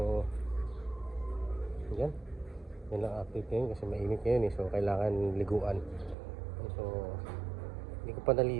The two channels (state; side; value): drops out; left; at 6.2 s